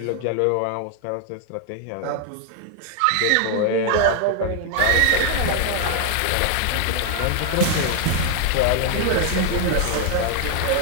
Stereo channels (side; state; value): both; different; correlation 0.00